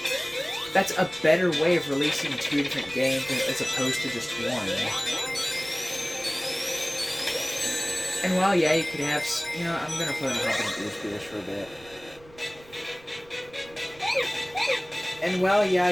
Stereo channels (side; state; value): right; noise; rumble, 25 dB below the sound